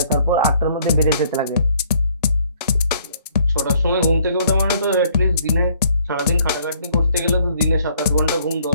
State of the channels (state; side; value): inverted; both; correlation -0.63